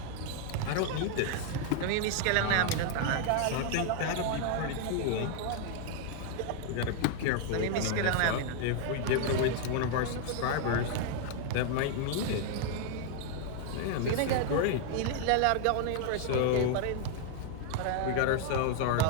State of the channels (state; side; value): different; both; correlation 0.00